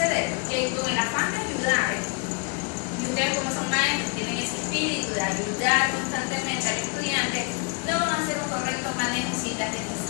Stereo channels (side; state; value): right; quieter; 33.4 dB